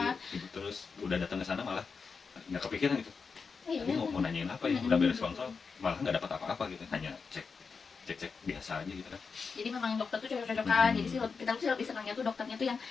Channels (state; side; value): quieter; right; 5.2 dB